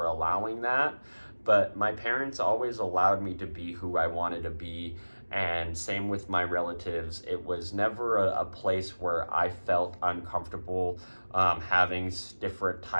allowing that. But my parents always allowed me to be who I wanted to be, and same with my relatives. It was never a place where I felt uncomfortable having different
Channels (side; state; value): both; inverted; correlation -1.00